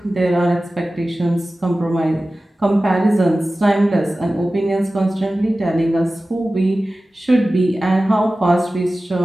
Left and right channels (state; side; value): normal; both; correlation 0.96